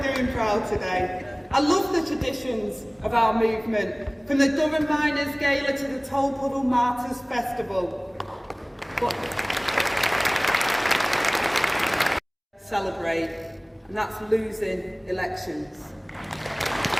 doing proud today. I love the traditions of our movement, from the Durham Miners' Gala to the Tolpuddle Martyrs Festival. But celebrate, and that's losing elections.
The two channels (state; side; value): identical; both; correlation 1.00